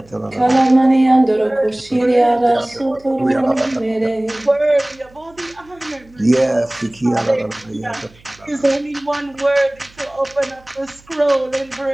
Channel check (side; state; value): right; noise; hum, 28 dB below the sound